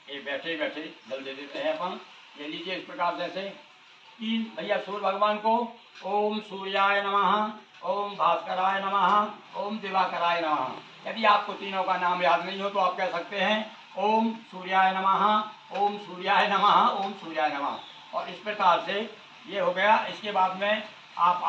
ये बैठे बैठे जल दे देते हैं अपन। ये लीजिए इस प्रकार से तीन भैया सूर्य भगवान को ओम सूर्याय नमः, ओम भास्कराय नमः, ओम दिवाकराय नमः। यदि आपको तीनों का नाम याद नहीं हो तो आप कह सकते हैं ओम सूर्याय नमः, ओम सूर्याय नमः, ओम सूर्याय नमः। और इस प्रकार से ये हो गया। इसके बाद में आप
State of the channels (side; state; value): both; identical; correlation 1.00